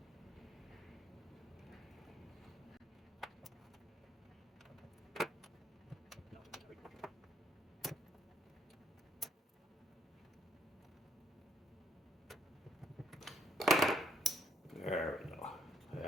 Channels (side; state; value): both; normal; correlation 0.70